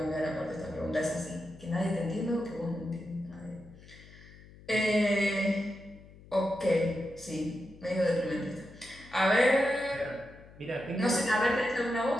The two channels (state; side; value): noise; left; hum, 21 dB below the sound